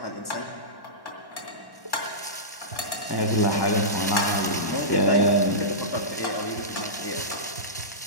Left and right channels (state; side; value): late; right; 1.1 ms